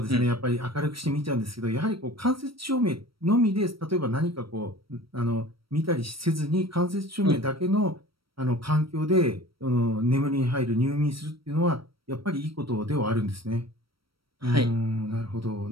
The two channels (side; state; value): left; late; 0.75 ms